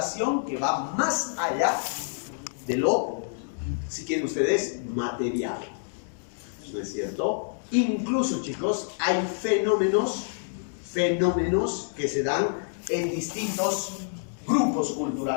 que va más allá de lo, si quieren ustedes, material. ¿No es cierto? Incluso, chicos, hay fenómenos que se dan en distintos grupos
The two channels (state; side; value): silent; right; digital silence